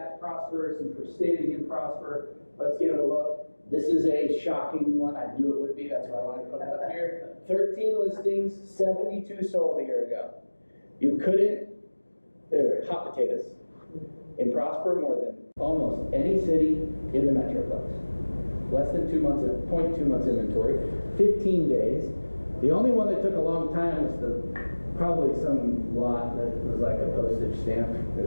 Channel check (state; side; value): inverted; both; correlation -1.00